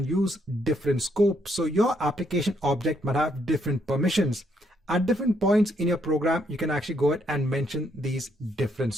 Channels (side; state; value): both; normal; correlation 0.73